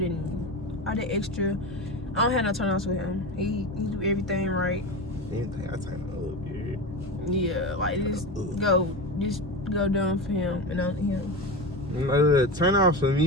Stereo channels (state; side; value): normal; both; correlation 0.23